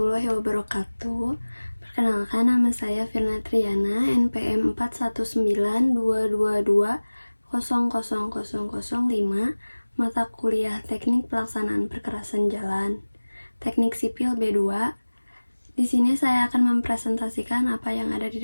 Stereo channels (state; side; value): inverted; both; correlation -1.00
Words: wabarakatuh. Perkenalkan, nama saya Firna Triana, NPM 419222000005, mata kuliah Teknik Pelaksanaan Perkerasan Jalan, Teknik Sipil B2. Di sini saya akan mempresentasikan apa yang ada di